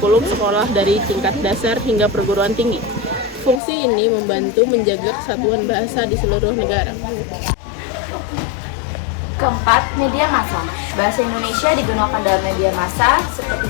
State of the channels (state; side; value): drops out; right; at 3.6 s